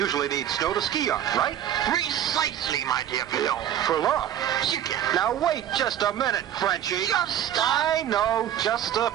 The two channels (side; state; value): left; quieter; 10.6 dB